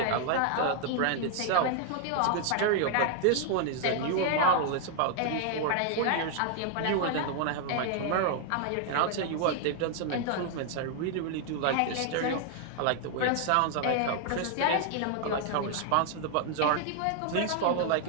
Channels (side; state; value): both; different; correlation 0.00